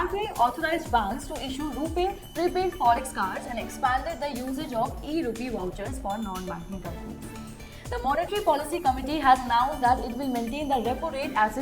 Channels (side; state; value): both; identical; correlation 1.00